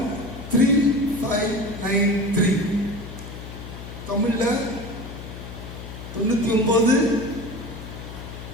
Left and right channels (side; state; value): left; noise; hum, 11 dB below the sound